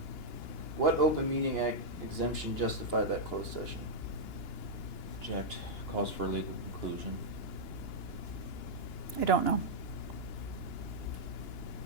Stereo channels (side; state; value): right; late; 2.9 ms